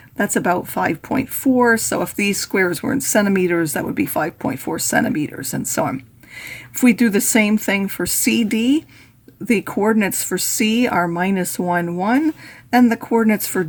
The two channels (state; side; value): identical; both; correlation 1.00